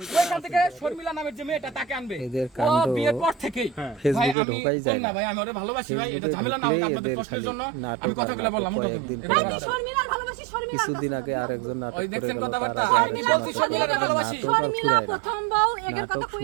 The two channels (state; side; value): drops out; left; at 4.4 s